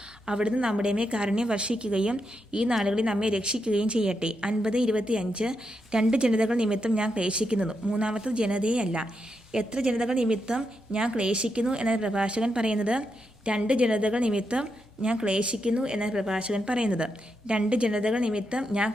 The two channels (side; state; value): both; normal; correlation 0.84